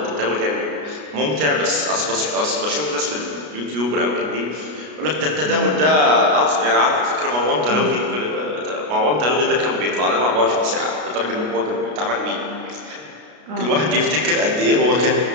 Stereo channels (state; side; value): late; left; 33 ms